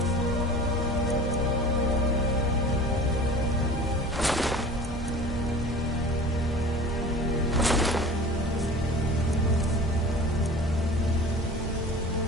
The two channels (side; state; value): both; normal; correlation 0.39